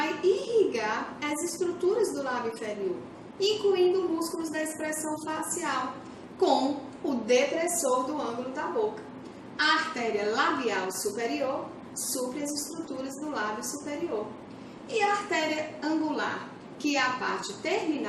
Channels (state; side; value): identical; both; correlation 1.00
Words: irrigar as estruturas do lábio inferior, incluindo músculos da expressão facial, como o depressor do ângulo da boca. A artéria labial superior supre as estruturas do lábio superior. E a artéria angular, que é a parte